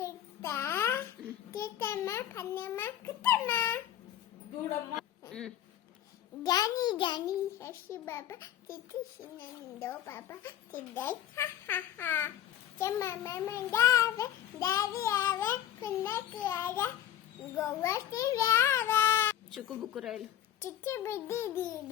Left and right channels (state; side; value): quieter; right; 11.5 dB